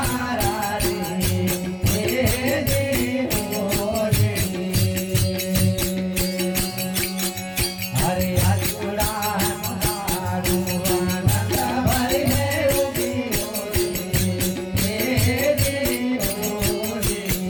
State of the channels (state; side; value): identical; both; correlation 1.00